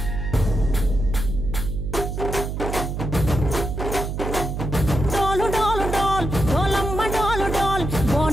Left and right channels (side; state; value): right; noise; hum, 4 dB below the sound